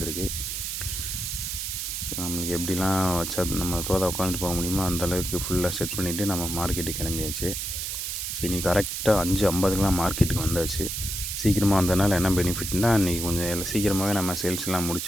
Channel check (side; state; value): right; noise; hiss, 3 dB below the sound